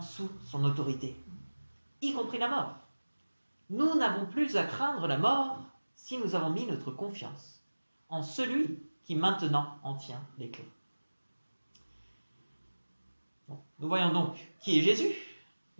sous son autorité, y compris la mort. Nous n'avons plus à craindre la mort si nous avons mis notre confiance en celui qui maintenant en tient les clés. Bon, nous voyons donc qui est Jésus,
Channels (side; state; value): both; inverted; correlation -1.00